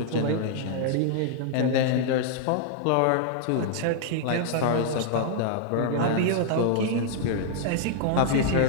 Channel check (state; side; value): different; both; correlation -0.01